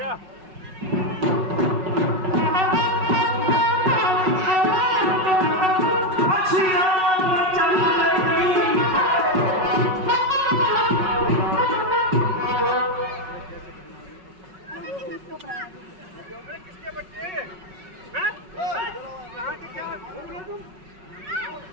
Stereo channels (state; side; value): late; left; 5.4 ms